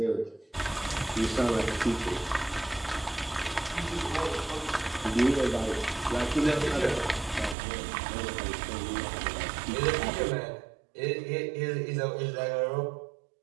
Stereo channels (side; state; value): left; drops out; at 7.6 s